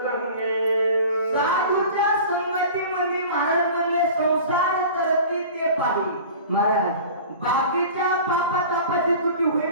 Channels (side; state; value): both; inverted; correlation -0.40